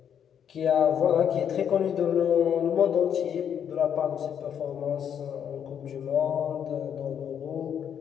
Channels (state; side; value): quieter; right; 8.6 dB